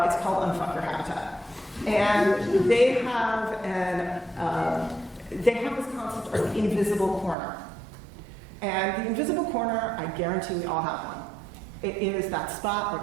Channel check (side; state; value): left; drops out; at 7.4 s